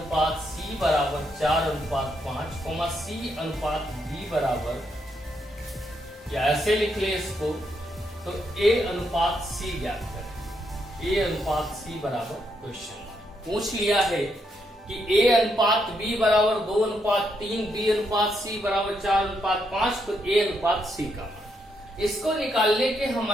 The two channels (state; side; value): normal; both; correlation 0.78